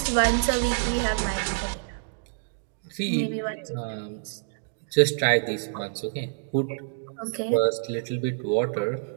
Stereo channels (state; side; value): silent; left; digital silence